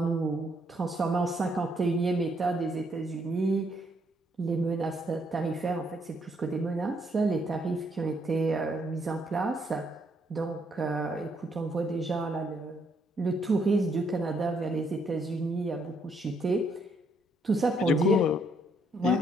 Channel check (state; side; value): normal; both; correlation 0.72